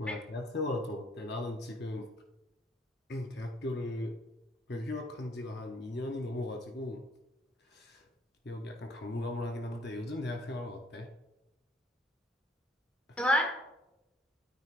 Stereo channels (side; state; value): both; normal; correlation 0.62